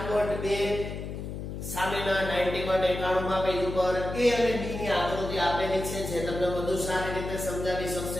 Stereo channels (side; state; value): left; noise; hum, 7 dB below the sound